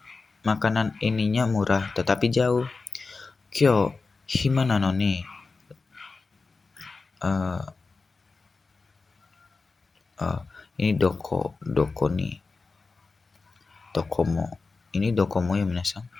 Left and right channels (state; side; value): quieter; right; 4.1 dB